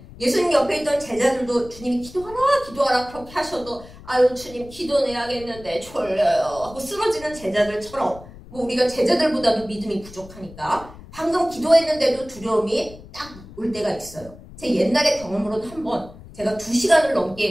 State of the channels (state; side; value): noise; left; rumble, 18 dB below the sound